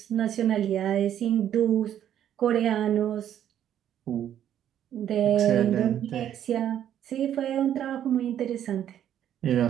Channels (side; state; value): left; quieter; 10.4 dB